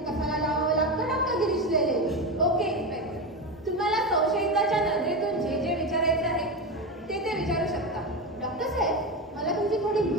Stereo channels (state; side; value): normal; both; correlation 0.17